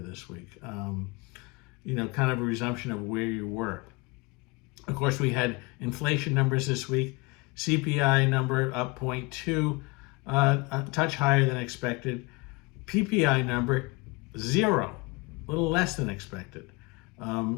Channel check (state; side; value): quieter; right; 25.9 dB